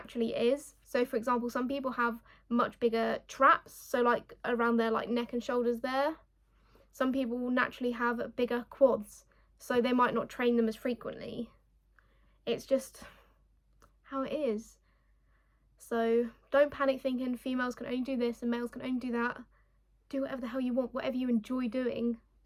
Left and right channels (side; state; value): both; identical; correlation 1.00